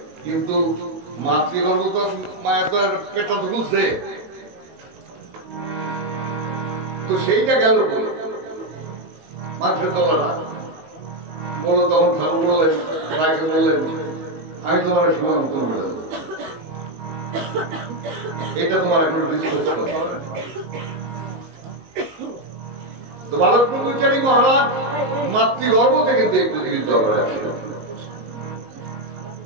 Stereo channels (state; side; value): late; left; 19 ms